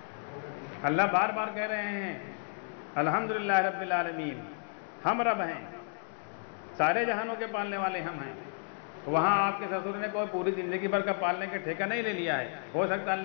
اللہ بار بار کہہ رہے ہیں الحمدللہ رب العالمین، ہم رب ہیں، سارے جہانوں کے پالنے والے ہم ہیں. وہاں آپ کے سسر نے کوئی پوری زندگی بھر کا پالنے کے ٹھیکہ نہیں لے لیا ہے. ہو سکتا ہے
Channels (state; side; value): silent; right; 56 dB below the other